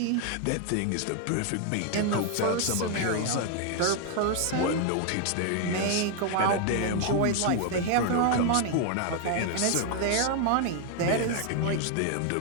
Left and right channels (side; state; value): both; different; correlation 0.00